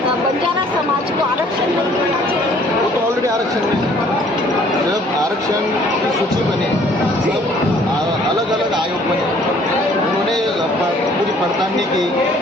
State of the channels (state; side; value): normal; both; correlation 0.58